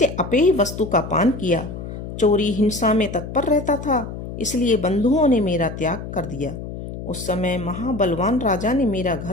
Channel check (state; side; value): noise; left; hum, 9 dB below the sound